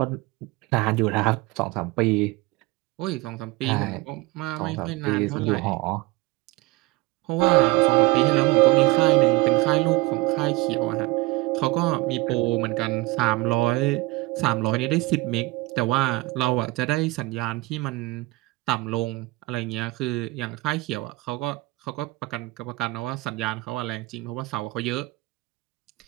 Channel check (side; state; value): left; quieter; 21.9 dB